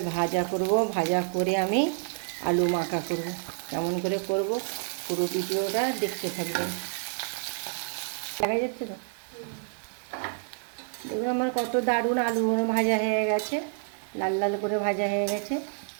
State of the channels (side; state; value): left; silent; 59 dB below the other